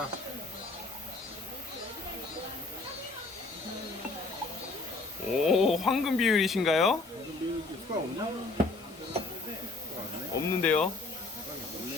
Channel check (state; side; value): quieter; right; 3.4 dB